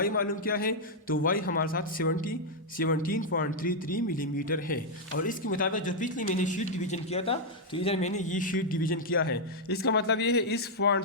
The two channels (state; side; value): normal; both; correlation -0.03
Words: मालूम किया है। तो y हमारे साथ 17.33 मिलीमीटर है। और इसके मुताबिक जो पिछली मैंने शीट डिवीजन किया था, तो इधर मैंने ये शीट डिवीजन किया है। इसका मतलब ये है इस पॉइंट